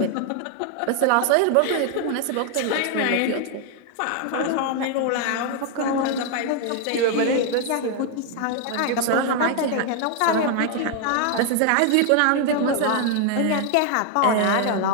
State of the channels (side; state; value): both; different; correlation 0.00